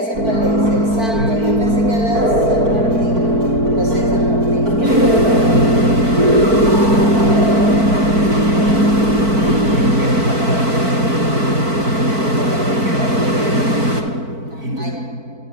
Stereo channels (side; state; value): left; late; 4.5 ms